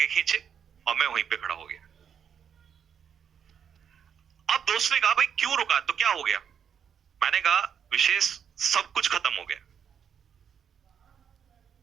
खींचे और मैं वहीं पे खड़ा हो गया। अब दोस्त ने कहा भाई क्यों रुका, तो क्या हो गया? मैंने कहा विशेष सब कुछ खत्म हो गया।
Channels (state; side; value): quieter; left; 7.9 dB